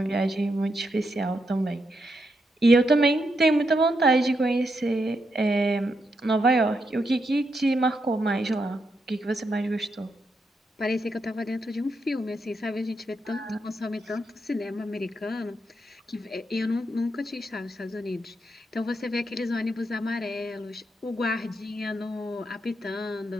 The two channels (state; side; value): normal; both; correlation 0.81